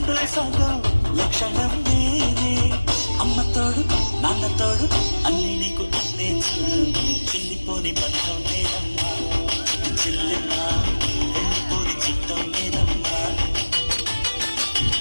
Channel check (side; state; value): both; inverted; correlation -1.00